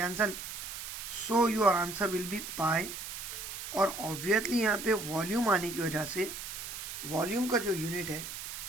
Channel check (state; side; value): noise; right; hiss, 8 dB below the sound